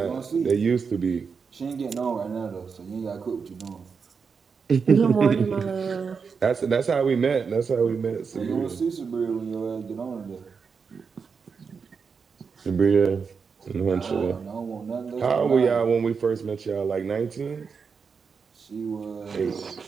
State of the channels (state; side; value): quieter; left; 5.6 dB